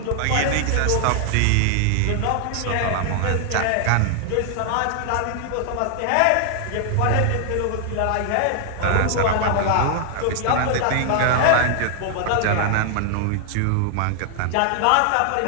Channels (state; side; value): different; both; correlation 0.00